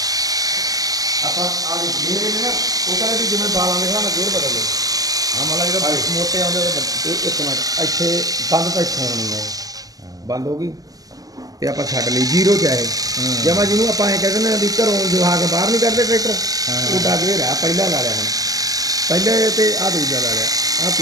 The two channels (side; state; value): left; late; 0.17 ms